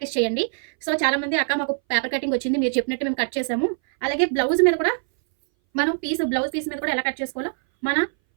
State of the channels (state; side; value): silent; left; 60 dB below the other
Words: చేయండి. సో చాలామంది అక్క మాకు పేపర్ కటింగ్ వచ్చింది, మీరు చెప్పినట్టు మేము కట్ చేసాము, అలాగే బ్లౌజ్ మీద కూడా మనం బ్లౌజ్ పీస్ మీద కూడా ఎలా కట్ చేసుకోవాలో మన